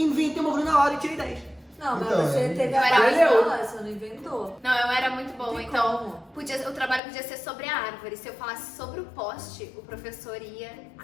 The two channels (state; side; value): drops out; right; at 7.0 s